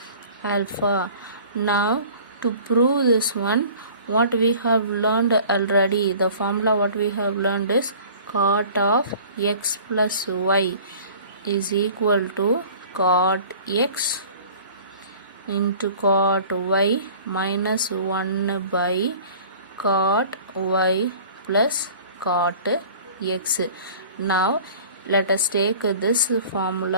alpha. Now to prove this one, what we have learned already, the formula what we have learned is cot of x plus y is equal to cot x into cot y minus 1 by cot y plus cot x. Now let us take this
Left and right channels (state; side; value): inverted; both; correlation -0.45